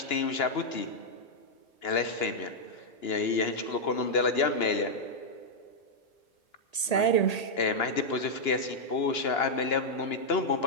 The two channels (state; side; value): late; right; 1.8 ms